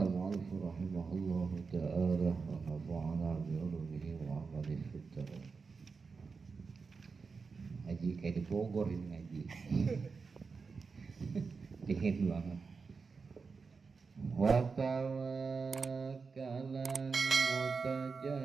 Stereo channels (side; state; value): left; quieter; 4.9 dB